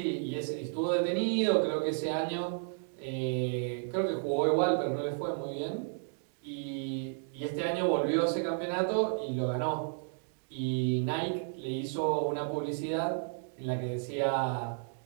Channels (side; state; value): left; silent; digital silence